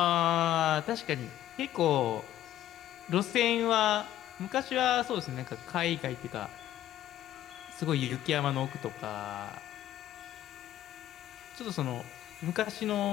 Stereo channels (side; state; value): right; quieter; 12.7 dB